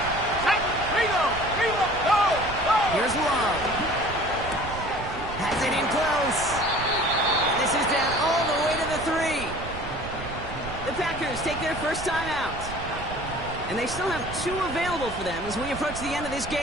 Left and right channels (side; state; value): right; noise; rumble, 11 dB below the sound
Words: Here's Love. Has it in close. And this is down all the way to the 3. The Packers take their first time out. And they still have 2 available for them as we approach the end of this